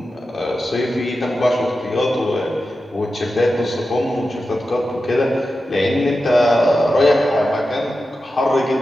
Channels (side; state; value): both; normal; correlation 0.91